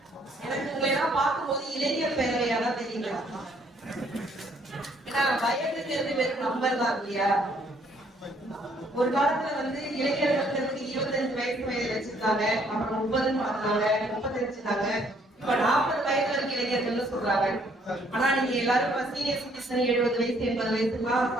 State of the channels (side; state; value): both; normal; correlation 0.65